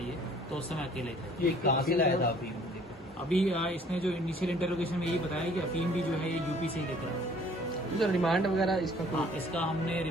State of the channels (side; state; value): both; normal; correlation 0.56